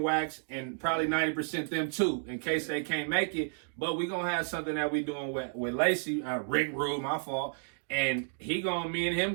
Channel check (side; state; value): left; silent; digital silence